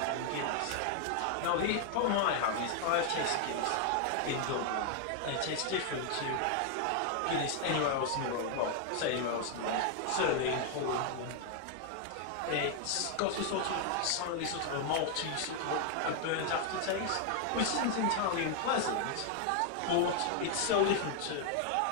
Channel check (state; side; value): different; both; correlation 0.00